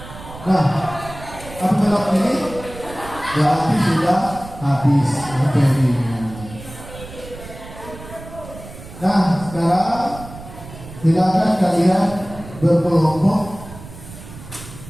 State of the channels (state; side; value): noise; right; rumble, 15 dB below the sound